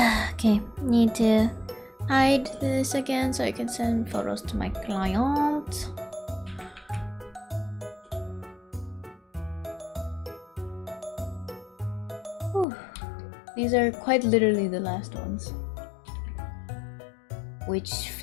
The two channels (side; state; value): right; drops out; at 12.7 s